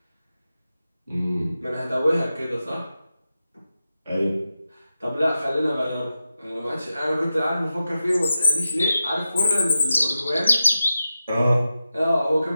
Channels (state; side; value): inverted; both; correlation -0.91